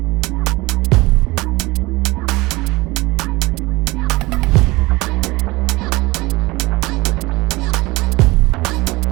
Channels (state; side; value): quieter; left; 21.8 dB